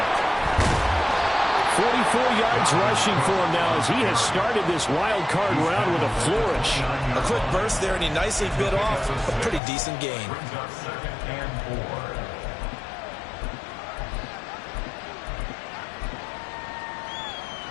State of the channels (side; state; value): right; drops out; at 9.6 s